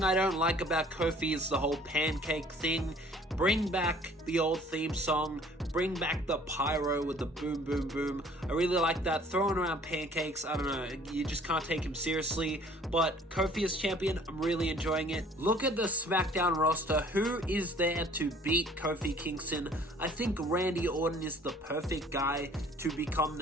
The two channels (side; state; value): both; normal; correlation 0.54